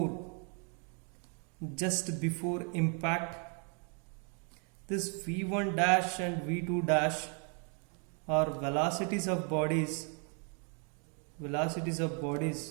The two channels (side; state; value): left; quieter; 38.6 dB